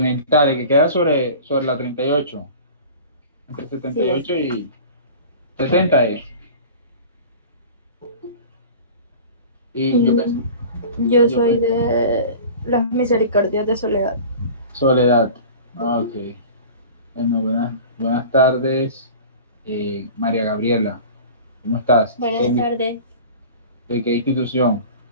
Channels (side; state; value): both; inverted; correlation -0.39